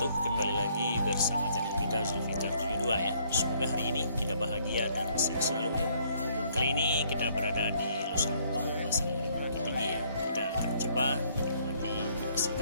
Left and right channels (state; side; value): inverted; both; correlation -0.65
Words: Kembali lagi bersama channel kita Zulfikar 72 ya. Semoga hari ini kita bahagia dan sehat selalu ya. Kali ini kita berada di Los Lembong, Pasar Bukit Tinggi ya. Kita akan coba menikmati nasi